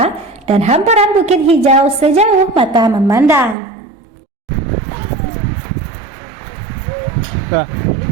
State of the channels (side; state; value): left; drops out; at 3.6 s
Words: dan hamparan bukit hijau sejauh mata memandang. Nah.